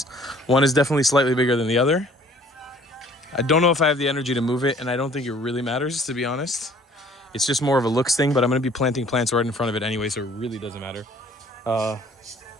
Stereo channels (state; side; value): normal; both; correlation 0.55